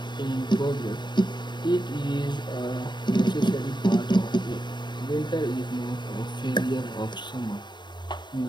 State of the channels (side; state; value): right; late; 0.22 ms